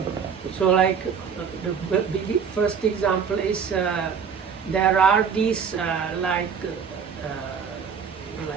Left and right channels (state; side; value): quieter; left; 6.6 dB